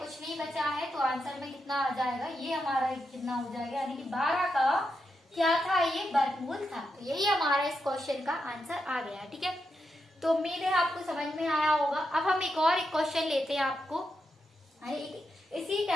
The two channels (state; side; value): normal; both; correlation 0.85